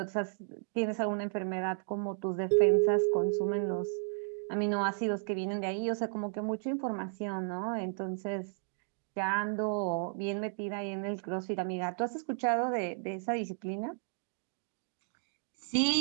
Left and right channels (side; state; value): left; silent; digital silence